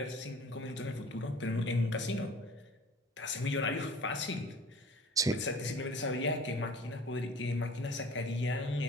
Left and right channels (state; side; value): normal; both; correlation 0.45